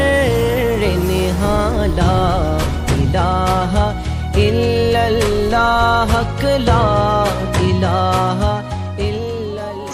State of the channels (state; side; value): identical; both; correlation 1.00